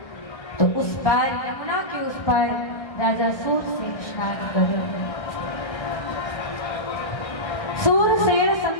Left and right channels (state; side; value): late; right; 1.5 ms